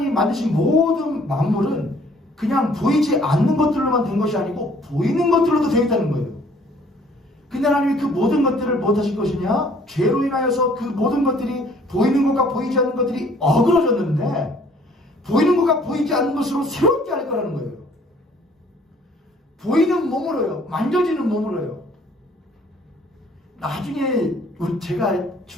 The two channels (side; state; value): both; normal; correlation 0.58